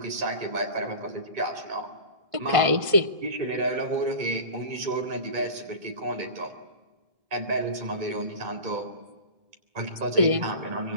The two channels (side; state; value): left; late; 1.5 ms